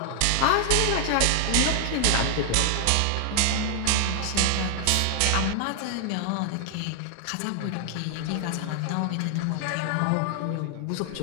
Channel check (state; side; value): different; both; correlation 0.00